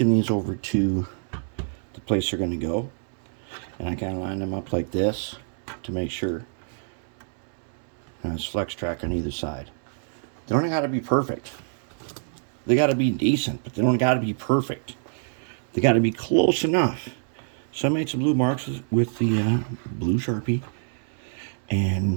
these over to the place they're going to go, and I kind of line them up like this to make sure. And it's flex track on either side. They don't got to be perfect. They got to be decent, but they don't got to be perfect. They got to be close enough. So I made some blue marks with the blue Sharpie,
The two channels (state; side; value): silent; left; digital silence